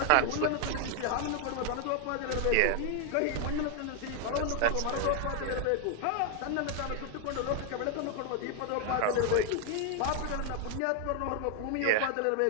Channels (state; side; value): different; both; correlation 0.00